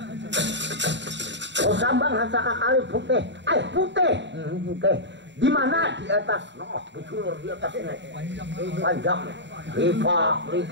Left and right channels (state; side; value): late; left; 0.52 ms